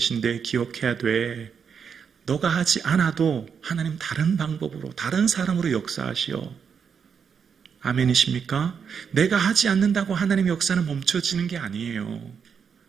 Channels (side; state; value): left; quieter; 6.7 dB